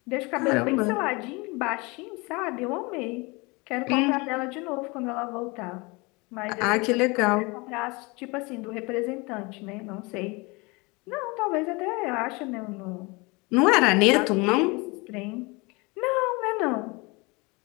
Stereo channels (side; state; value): right; quieter; 26.4 dB